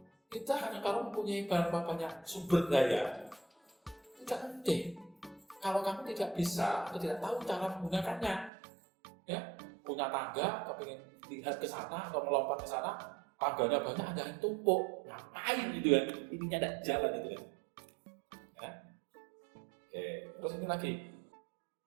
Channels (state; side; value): drops out; left; at 8.5 s